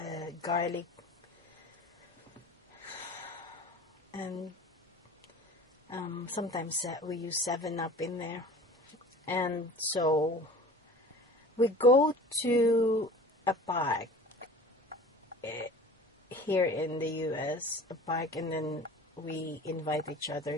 garlic, and sometimes we use 7-Up in there. And so we go to a park here in the US, a park, and then we invite each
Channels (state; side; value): normal; both; correlation 0.41